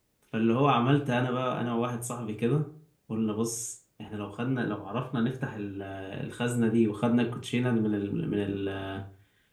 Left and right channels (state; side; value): identical; both; correlation 1.00